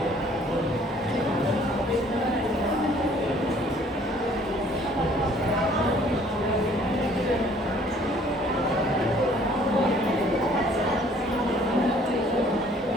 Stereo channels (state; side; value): normal; both; correlation 0.58